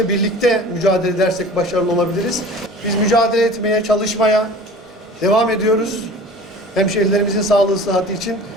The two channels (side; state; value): both; normal; correlation 0.42